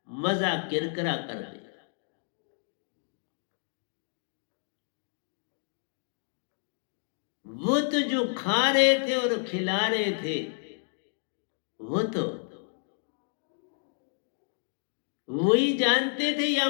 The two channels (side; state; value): right; silent; digital silence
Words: मजा किरकिरा कर दिया। वो तो जो खा रहे थे और खिला रहे थे, वो तो वही जानते थे या